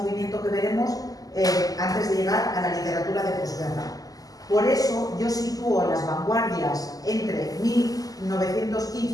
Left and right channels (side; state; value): right; late; 0.17 ms